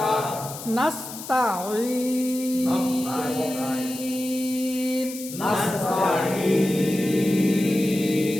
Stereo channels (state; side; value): noise; left; hiss, 12 dB below the sound